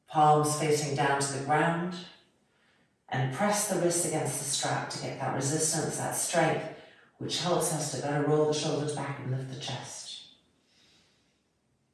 palms facing down to the ground, and press the wrists against the strap to get that resistance, that strength, which helps us to better roll the shoulders back and lift the chest.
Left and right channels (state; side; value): identical; both; correlation 1.00